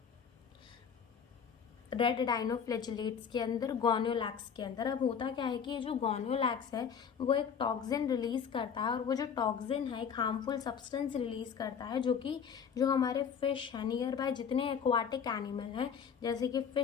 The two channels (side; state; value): right; quieter; 7.0 dB